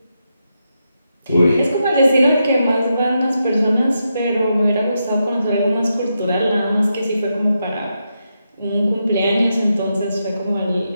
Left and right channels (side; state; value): both; inverted; correlation -0.85